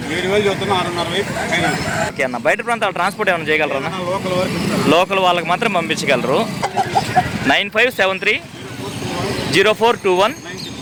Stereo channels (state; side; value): identical; both; correlation 1.00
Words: 7,000. ఓకే అన్న, బయట ప్రాంతాల ట్రాన్స్పోర్ట్ ఏమైనా చేయగలరన్నా? లోకల్ వాళ్ళకి మాత్రం పంపించగలరు.